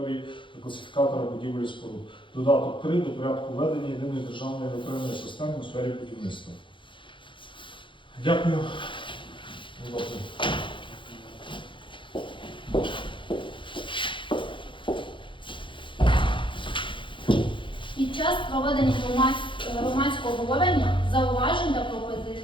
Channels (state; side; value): late; right; 0.24 ms